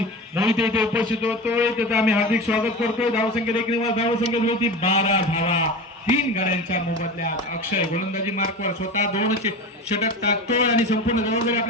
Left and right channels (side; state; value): both; normal; correlation 0.30